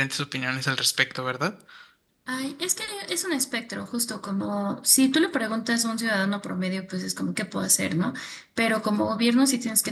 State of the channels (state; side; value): identical; both; correlation 1.00